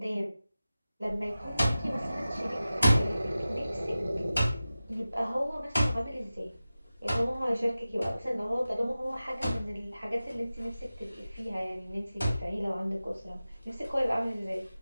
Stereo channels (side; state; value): both; inverted; correlation -0.95